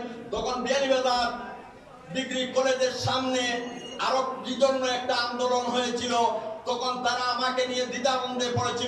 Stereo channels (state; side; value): identical; both; correlation 1.00